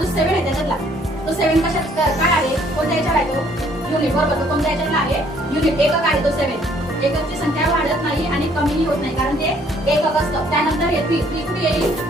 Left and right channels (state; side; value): normal; both; correlation 0.63